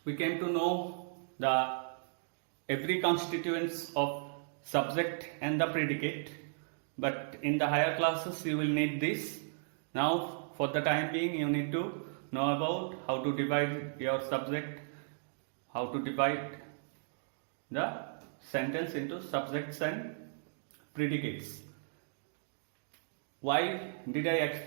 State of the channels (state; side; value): silent; left; digital silence